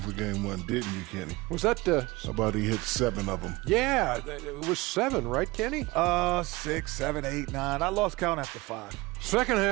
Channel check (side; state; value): left; quieter; 21.9 dB